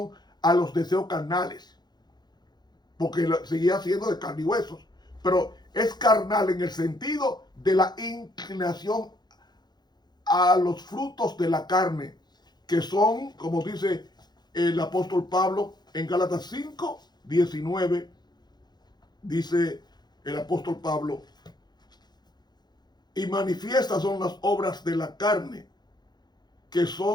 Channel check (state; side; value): late; right; 0.20 ms